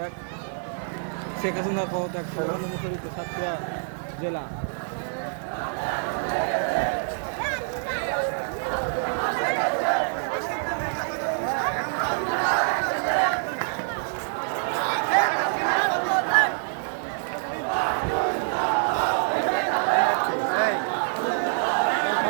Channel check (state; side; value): silent; left; digital silence